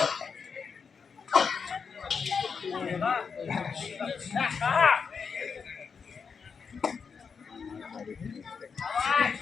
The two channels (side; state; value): right; quieter; 5.8 dB